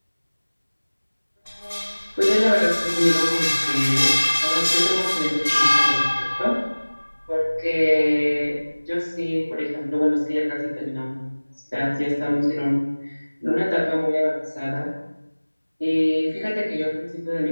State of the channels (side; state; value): both; inverted; correlation -1.00